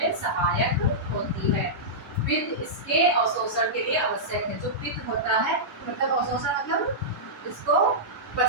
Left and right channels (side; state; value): both; normal; correlation -0.13